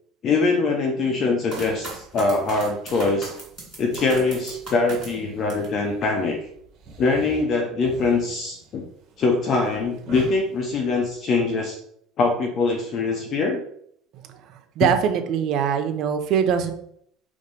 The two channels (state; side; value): normal; both; correlation 0.44